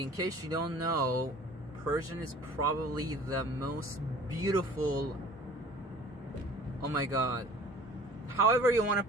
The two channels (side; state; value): both; normal; correlation 0.48